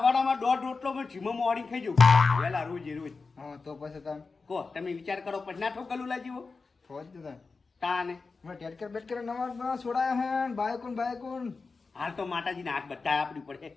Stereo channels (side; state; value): right; quieter; 4.3 dB